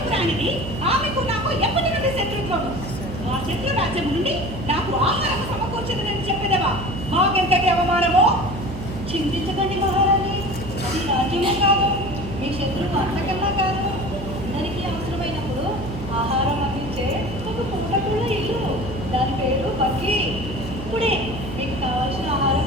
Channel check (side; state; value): right; noise; hum, 10 dB below the sound